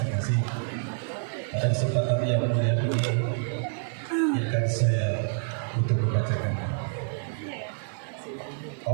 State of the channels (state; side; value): silent; left; 60 dB below the other